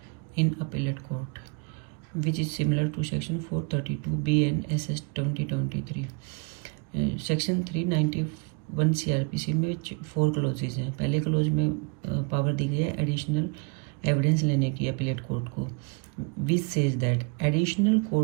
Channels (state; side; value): quieter; left; 33.4 dB